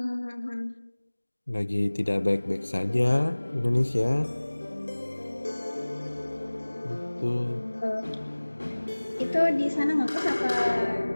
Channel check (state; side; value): inverted; both; correlation -1.00